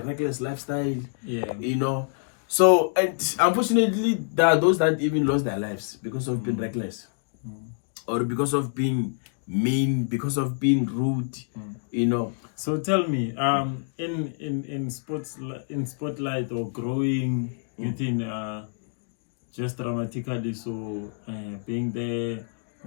lifestyle. So, and unfortunately, there are those that even lost their lives because of being reckless, or because of being mean, because of being rude. So tell me, in spotlight or growing within just dramatically, so being there,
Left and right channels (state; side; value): silent; right; digital silence